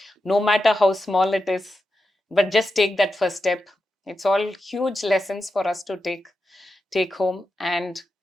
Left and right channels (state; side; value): normal; both; correlation 0.89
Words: no matter how small it is, but just take that first step. It's all huge lessons for us to take home and